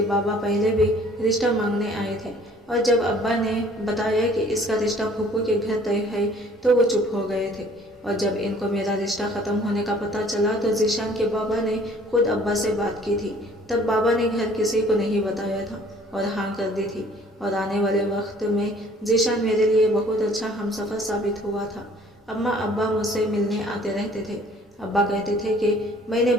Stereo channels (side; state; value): both; normal; correlation 0.55